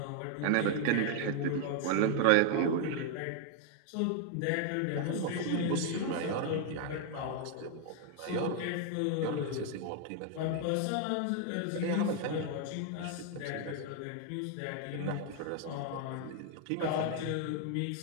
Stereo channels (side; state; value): both; different; correlation 0.00